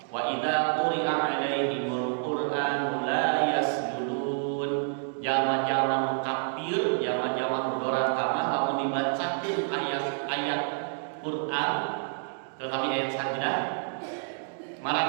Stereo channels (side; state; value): left; silent; digital silence